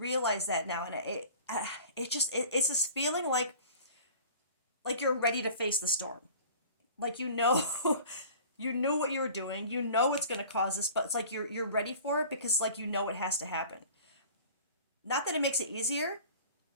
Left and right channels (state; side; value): inverted; both; correlation -0.44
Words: that now, and it's this feeling like you're ready to face the storm. Like, you know, you knew what you were doing, you know it's going to cause this, but it's like you're ready for it because, like, you know it has to happen. Not that it makes it easier,